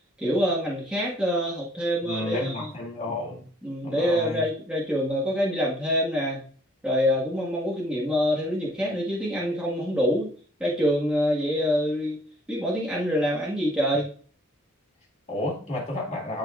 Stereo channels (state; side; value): normal; both; correlation 0.60